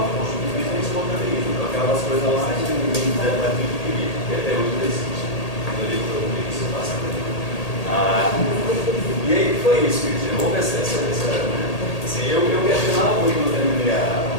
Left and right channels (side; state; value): right; late; 1.8 ms